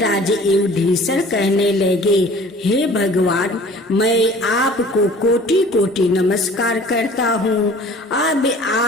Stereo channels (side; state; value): both; normal; correlation 0.48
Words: युधिष्ठिर कहने लगे, हे भगवान, मैं आपको कोटि कोटि नमस्कार करता हूँ। अब